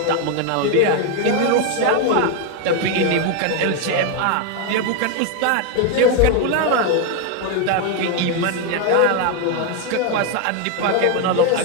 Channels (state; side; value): different; both; correlation 0.01